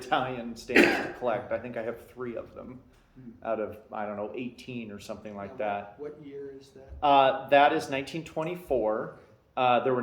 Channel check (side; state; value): both; identical; correlation 1.00